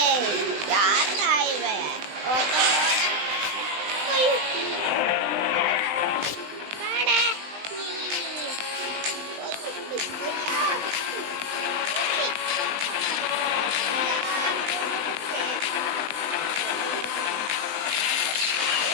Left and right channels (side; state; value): left; late; 20 ms